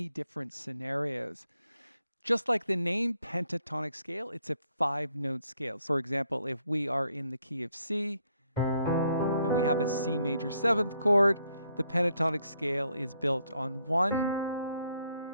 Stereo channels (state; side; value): inverted; both; correlation -0.73